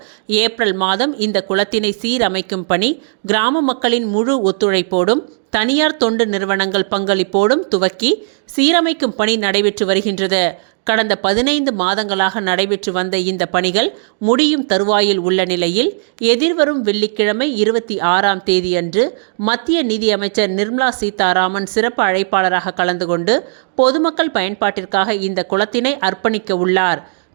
ஏப்ரல் மாதம் இந்த குளத்தினை சீரமைக்கும் பணி கிராம மக்களின் முழு ஒத்துழைப்போடும் தனியார் தொண்டு நிறுவனங்கள் பங்களிப்போடும் துவக்கி சீரமைக்கும் பணி நடைபெற்று வருகின்றது. கடந்த 15 மாதங்களாக நடைபெற்று வந்த இந்த பணிகள் முடியும் தருவாயில் உள்ள நிலையில் எதிர்வரும் வெள்ளிக்கிழமை 26ஆம் தேதியன்று மத்திய நிதி அமைச்சர் நிர்மலா சீதாராமன் சிறப்பு அழைப்பாளராக கலந்து கொண்டு பொதுமக்கள் பயன்பாட்டிற்காக இந்த குளத்தினை அர்ப்பணிக்க உள்ளார்.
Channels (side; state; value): left; silent; digital silence